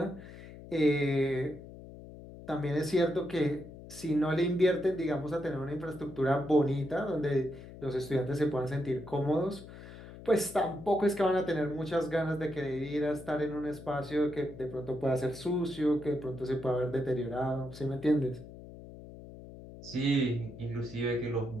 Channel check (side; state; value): left; noise; hum, 15 dB below the sound